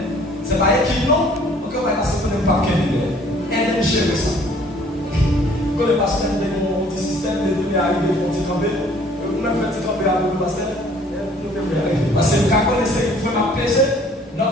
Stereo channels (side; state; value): both; normal; correlation 0.56